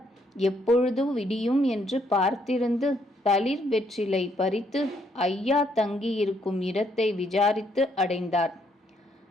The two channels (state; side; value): normal; both; correlation 0.71